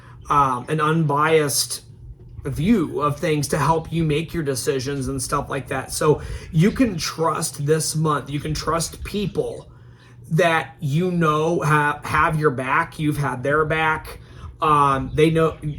unbiased view of things to help you make your decisions and stuff like that. So you can trust this month. You can trust people that you know have your back. You've had their back. They know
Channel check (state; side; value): identical; both; correlation 1.00